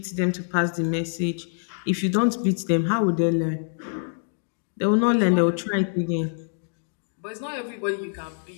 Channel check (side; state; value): right; silent; digital silence